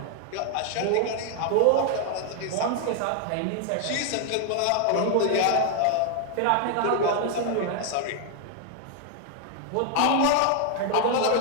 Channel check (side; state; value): both; different; correlation 0.00